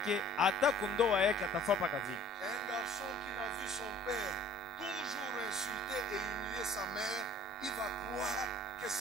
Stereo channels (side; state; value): right; noise; rumble, 28 dB below the sound